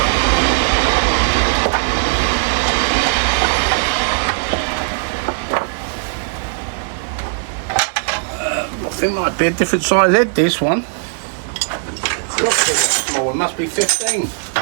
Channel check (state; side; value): silent; left; digital silence